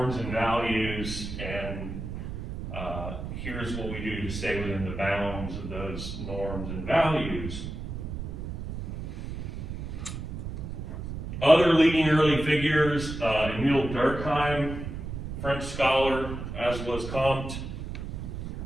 and values, and here's what we do to stay within the bounds of those norms and values. Other leading early figures, Emile Durkheim, French scholar, as was Comte,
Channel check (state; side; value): noise; right; rumble, 7 dB below the sound